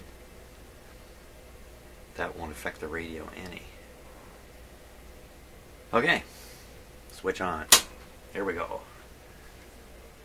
That won't affect the radio any. Okay, switch on. Here we go.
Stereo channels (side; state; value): both; identical; correlation 1.00